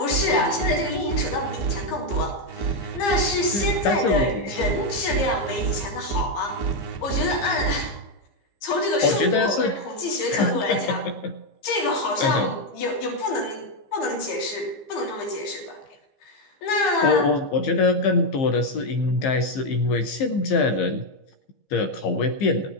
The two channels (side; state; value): right; late; 15 ms